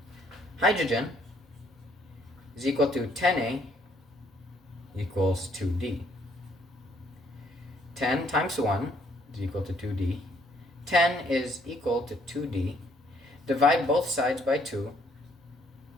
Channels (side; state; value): both; normal; correlation 0.67